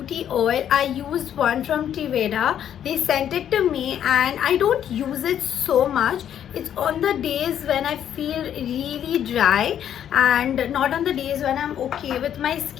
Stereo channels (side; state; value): right; quieter; 9.9 dB